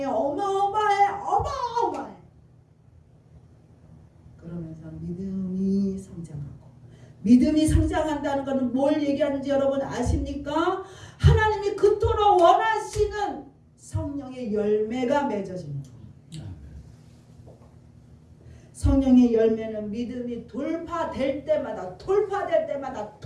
어마어마해. 그러면서 믿음이 성장하고 믿음이 성장한다는 것은 뭘 얘기하는지 여러분 아십니까? 하나님이 그토록 원하시는 성령의 열매가 맺어집니다. 성령의 열매는 믿음이 돌파될 때마다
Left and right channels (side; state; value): both; identical; correlation 1.00